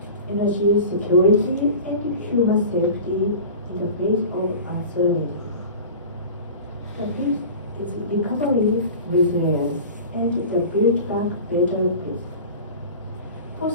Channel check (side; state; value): both; inverted; correlation -0.37